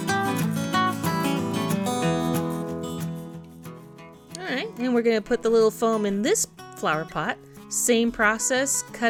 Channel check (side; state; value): both; identical; correlation 1.00